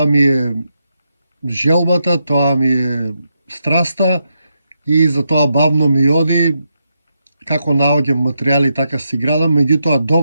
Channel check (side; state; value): both; inverted; correlation -0.83